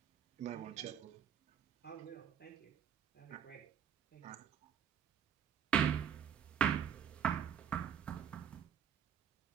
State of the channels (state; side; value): quieter; left; 8.6 dB